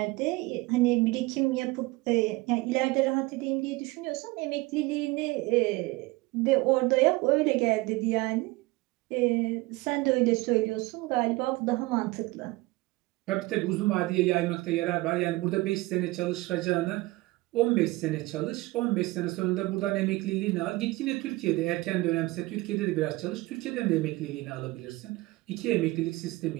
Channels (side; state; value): left; quieter; 21.2 dB